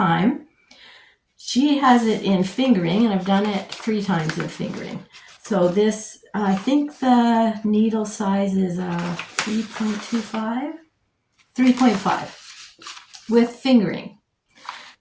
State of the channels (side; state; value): both; identical; correlation 1.00